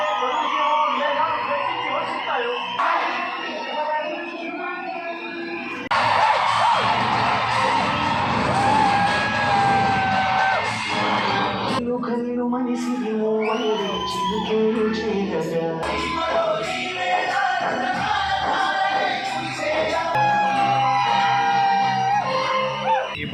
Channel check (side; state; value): both; identical; correlation 1.00